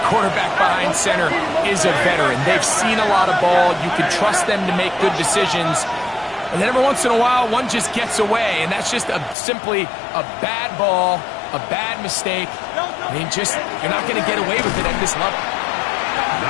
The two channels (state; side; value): drops out; right; at 9.3 s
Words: quarterback behind center is a veteran. They've seen a lot of ball. You can trust them to make good decisions. And then every once in a while, one just gets away, and that's just simply a bad ball, a bad mistake. I mean, you're not going to get away with it at this level.